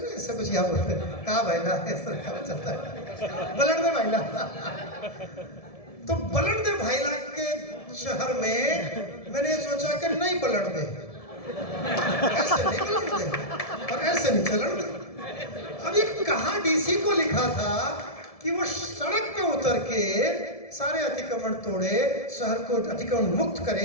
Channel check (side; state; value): right; late; 1.7 ms